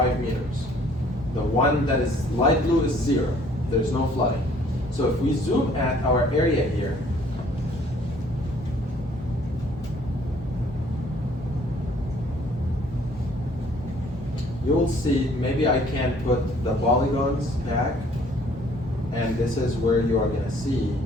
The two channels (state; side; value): normal; both; correlation 0.59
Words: meters. The one that is light blue is 0. There's no flooding. So if we zoom at our area here, you'll see, maybe I can put the polygons back, and this is where you are gonna see,